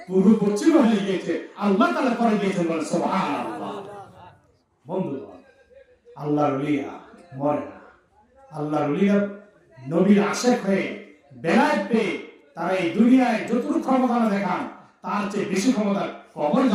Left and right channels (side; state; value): both; identical; correlation 1.00